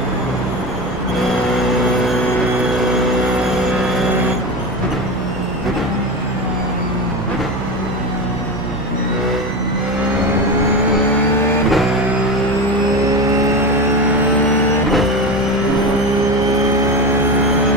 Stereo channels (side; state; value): both; normal; correlation 0.23